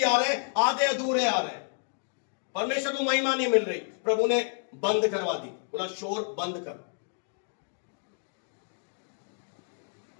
आ रहे हैं आधे अधूरे आ रहे हैं। परमेश्वर को महिमा नहीं मिल रही। प्रभु ने बंद करवा दी, बोला शोर बंद कर।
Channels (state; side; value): silent; right; 57 dB below the other